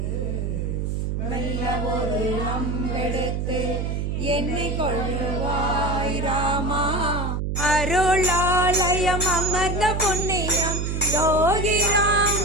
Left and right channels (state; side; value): noise; right; hum, 1 dB below the sound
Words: மெல்ல ஒரு அம்பெடுத்து என்னை கொள்ளுவாய் ராமா அருளாலயம் அமர்ந்த புண்ணியம் யோகிராம்